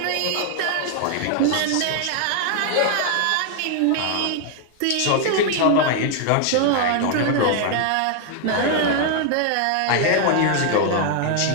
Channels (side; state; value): both; different; correlation 0.00